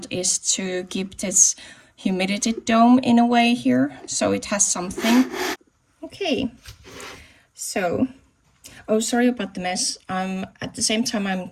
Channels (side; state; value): both; identical; correlation 1.00